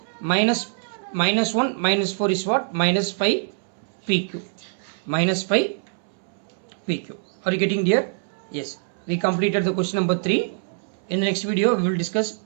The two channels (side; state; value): left; silent; 63 dB below the other